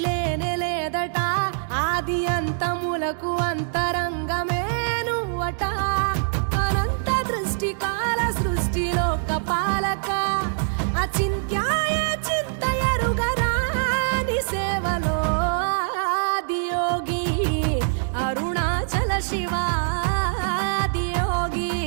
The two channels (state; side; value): silent; left; 63 dB below the other